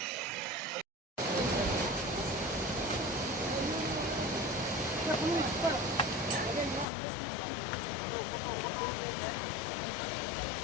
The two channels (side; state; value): right; drops out; at 6.9 s